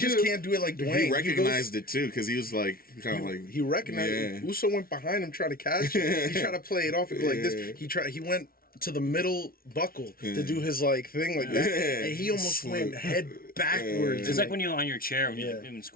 scoop. can't do it like Dwayne. He recognized it too because he was like kind of like He recognized Yeah. it. Uso went behind him trying to catch it. He tried to play it off and go like Yeah. this. He went to the middle buckle to do his like thing like that. Yeah. And he almost went head backwards. It's like when you're on your chair when Yeah. you're in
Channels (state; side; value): late; right; 0.43 ms